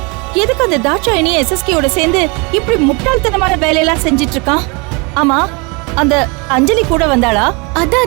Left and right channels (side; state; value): left; quieter; 29.7 dB